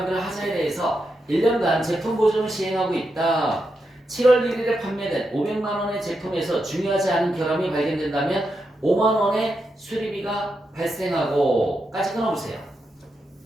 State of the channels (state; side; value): normal; both; correlation 0.85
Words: 하자에 대해서 1년간 제품 보증을 시행하고 있다. 7월 1일에 판매된 500만 원의 제품에서 중요하지 않은 결함이 발견된다면 5만 원의 수리비가 발생하고 까지 끊어보세요.